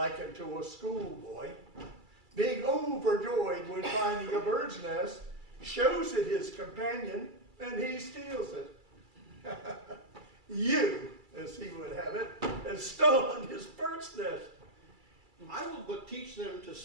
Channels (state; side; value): late; left; 2.3 ms